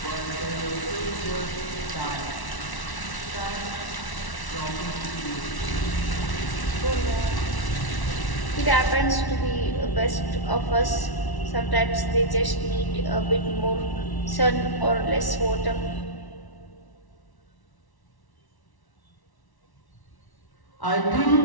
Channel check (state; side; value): late; right; 1.1 ms